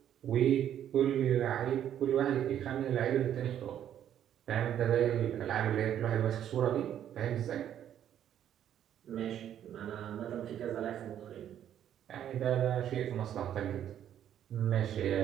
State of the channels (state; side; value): quieter; left; 10.3 dB